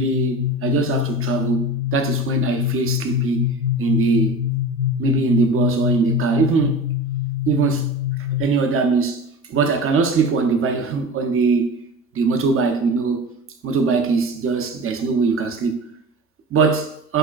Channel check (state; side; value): normal; both; correlation 0.33